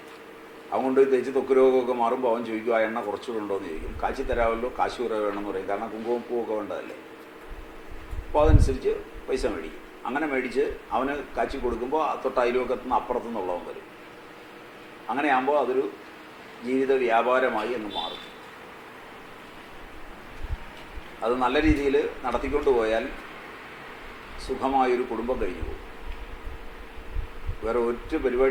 അവൻ കൊണ്ട് തേച്ച് ത്വക്ക് രോഗമൊക്കെ മാറുമ്പോൾ അവൻ ചോദിക്കും ആ എണ്ണ കുറച്ചുകൂടെ ഉണ്ടോ എന്ന് ചോദിക്കും. കാച്ചി തരാമല്ലോ, കാശ് കുറേ വേണമെന്ന് പറയും. കാരണം കുങ്കുമപ്പൂവൊക്കെ വേണ്ടതല്ലേ. അപ്പോൾ അതനുസരിച്ച് പൈസ മേടിക്കും. അങ്ങനെ മേടിച്ച് അവന് കാച്ചി കൊടുക്കുമ്പോൾ തൊട്ട് അയൽവക്കത്തുനിന്ന് അപ്പുറത്തുനിന്നുള്ളവൻ വരും. അങ്ങനെയാകുമ്പോൾ അതൊരു ജീവിത വ്യാപാരമായി എന്ന് മാറും. അത് നല്ല രീതിയിൽ നടത്തിക്കൊണ്ട് പോയാൽ സുഖമായൊരു കുടുംബം കഴിഞ്ഞു പോകും. വേറെ ഒറ്റ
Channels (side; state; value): both; identical; correlation 1.00